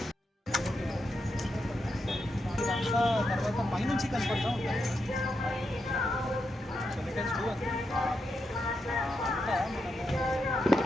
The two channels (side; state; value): both; normal; correlation 0.84